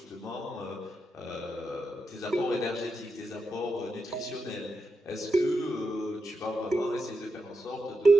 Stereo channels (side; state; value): both; normal; correlation 0.87